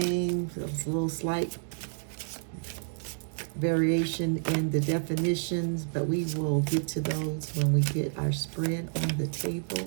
There's a little slight variation in the definitions, but we will get to those when we get our spread on the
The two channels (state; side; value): silent; left; digital silence